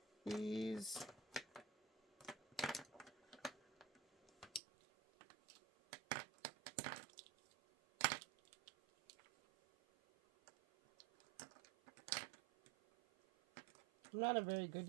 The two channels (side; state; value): left; drops out; at 4.6 s